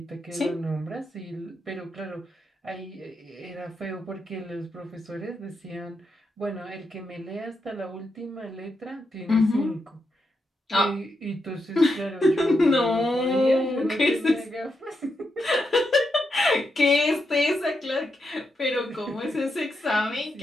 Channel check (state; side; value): normal; both; correlation 0.84